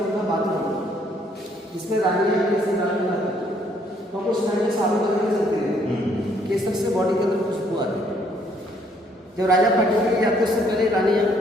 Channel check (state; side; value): normal; both; correlation 0.66